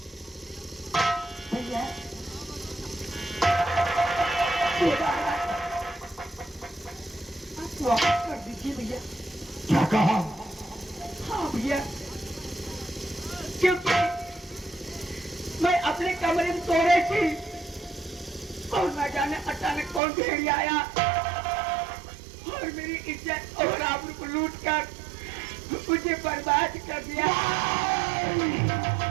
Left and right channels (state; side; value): drops out; left; at 20.0 s